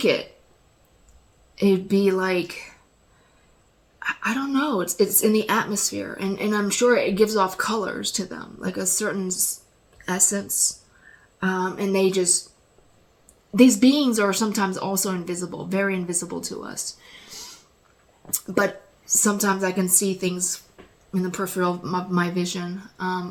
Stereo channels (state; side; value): identical; both; correlation 1.00